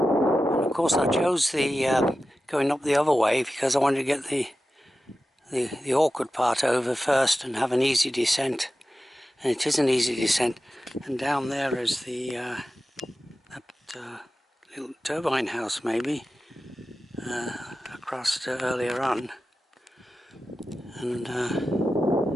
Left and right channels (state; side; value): normal; both; correlation 0.93